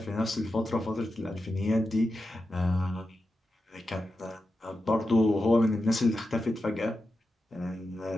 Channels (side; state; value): both; normal; correlation 0.90